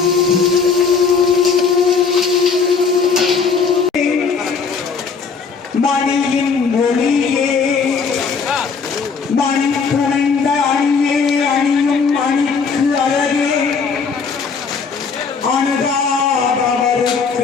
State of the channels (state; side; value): quieter; right; 5.4 dB